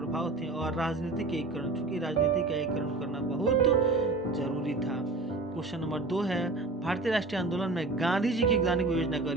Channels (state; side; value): quieter; left; 3.3 dB